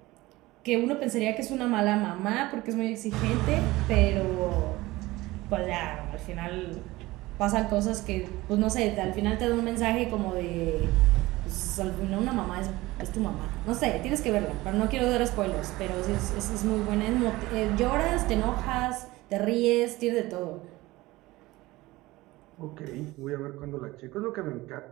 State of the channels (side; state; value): left; quieter; 19.3 dB